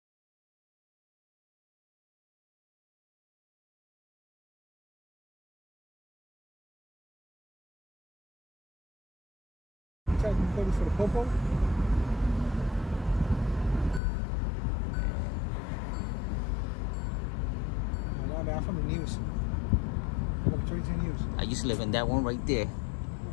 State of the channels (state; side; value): drops out; right; at 14.0 s